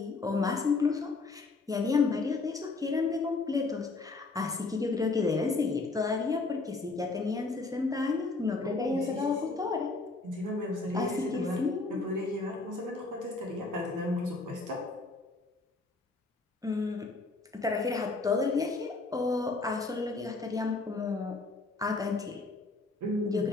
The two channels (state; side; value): quieter; right; 3.6 dB